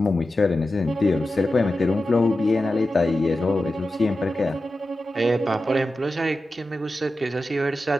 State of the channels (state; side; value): normal; both; correlation 0.92